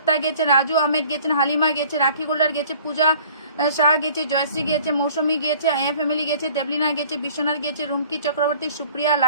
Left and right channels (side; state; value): both; inverted; correlation -0.51